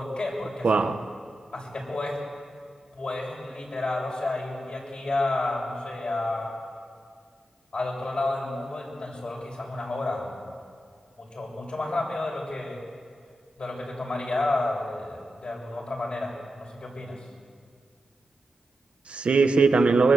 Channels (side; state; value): both; normal; correlation 0.88